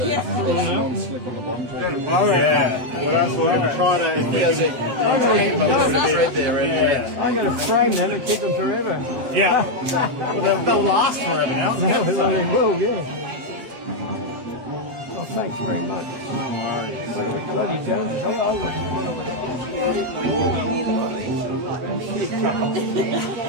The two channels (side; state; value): left; late; 8.1 ms